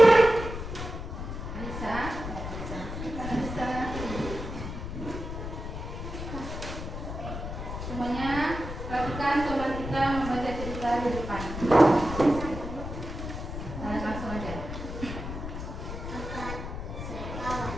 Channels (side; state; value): left; noise; rumble, 7 dB below the sound